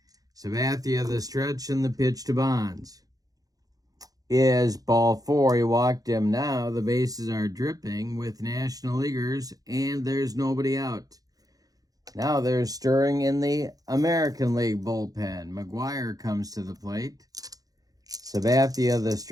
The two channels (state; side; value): late; left; 0.18 ms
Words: Sabathia the stretch, and the pitch to Bonds is ball 4. He walked him. Now the bases are dripping with National Leaguers, and there's nobody out. Now there's stirring in the American League bullpen. McGuire comes to the plate. Sabathia the